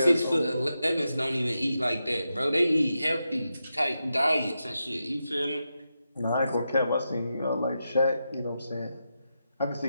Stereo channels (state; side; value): inverted; both; correlation -0.88